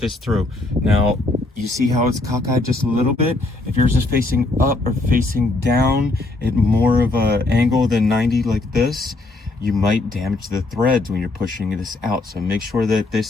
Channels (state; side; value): quieter; right; 3.0 dB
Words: through. Now you see how it's cockeyed just a little bit? If yours is facing up or facing down at more of a angle than 90 like this, you might damage the threads when you're pushing this out. So make sure that